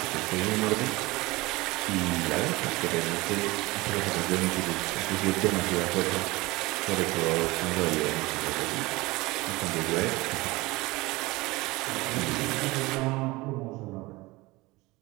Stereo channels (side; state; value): left; quieter; 21.5 dB